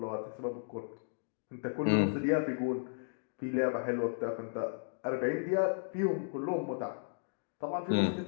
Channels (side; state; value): right; silent; digital silence